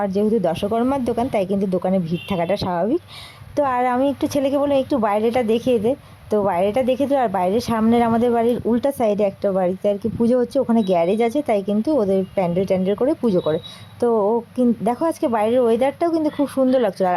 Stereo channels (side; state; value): both; identical; correlation 1.00